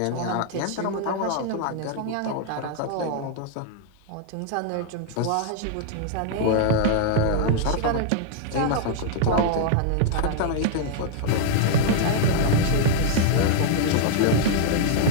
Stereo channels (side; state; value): both; different; correlation -0.01